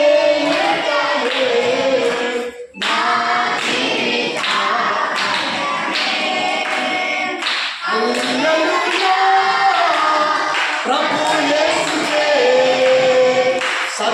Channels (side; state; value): both; identical; correlation 1.00